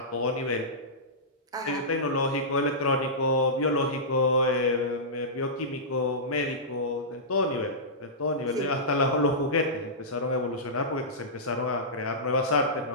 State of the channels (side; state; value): both; normal; correlation -0.17